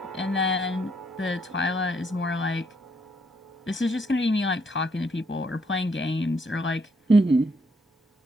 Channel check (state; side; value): normal; both; correlation 0.72